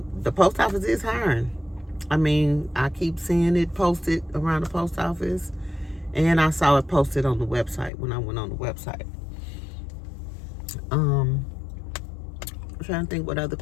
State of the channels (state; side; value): drops out; right; at 7.9 s